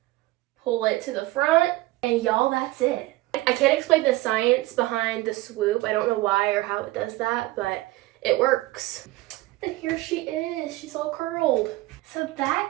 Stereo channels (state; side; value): quieter; left; 19.1 dB